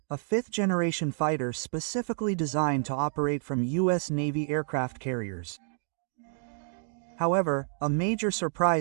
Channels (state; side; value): silent; left; 55 dB below the other